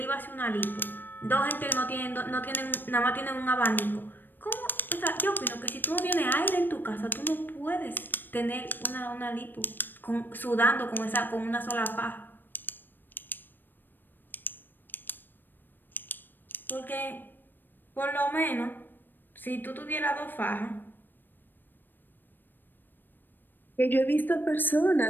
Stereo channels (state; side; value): late; right; 0.093 ms